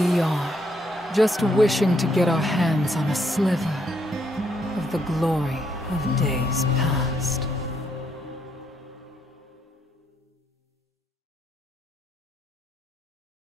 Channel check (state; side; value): normal; both; correlation 0.73